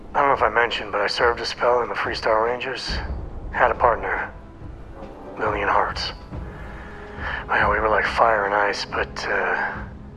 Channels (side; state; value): both; identical; correlation 1.00